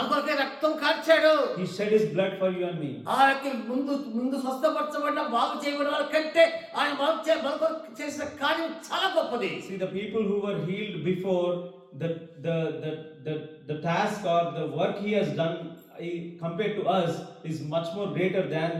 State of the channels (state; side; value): identical; both; correlation 1.00